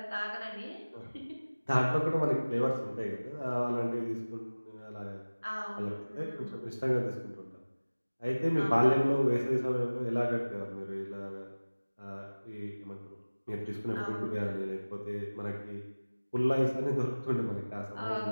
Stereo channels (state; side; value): inverted; both; correlation -1.00